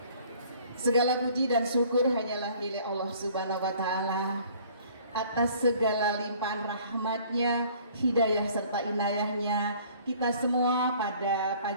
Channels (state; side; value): inverted; both; correlation -0.55